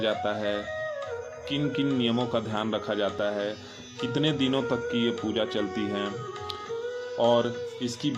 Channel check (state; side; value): identical; both; correlation 1.00